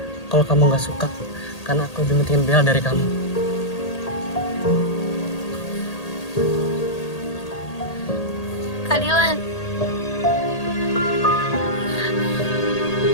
Kalau kamu nggak suka, karena aku lebih pentingin Bella dari kamu. Kak Dylan.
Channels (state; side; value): late; right; 1.8 ms